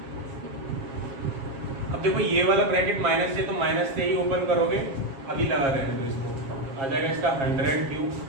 अब देखो ये वाला ब्रैकेट माइनस से तो माइनस से ही ओपन करोगे अभी लगा रहने दो इसको आ जाएगा इसका 100 cube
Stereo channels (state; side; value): late; left; 7.4 ms